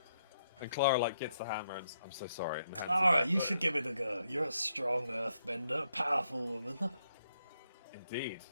And Clara like gets the hammer and I'm so sorry. And hands it Alright, back. you should give it a go. You're a strong earthbender, powerful woman. Indeed.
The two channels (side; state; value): both; inverted; correlation -0.78